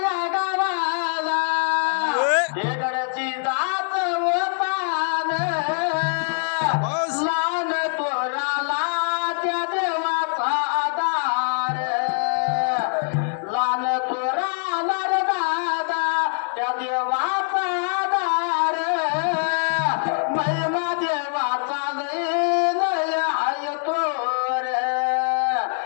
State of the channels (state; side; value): silent; right; 57 dB below the other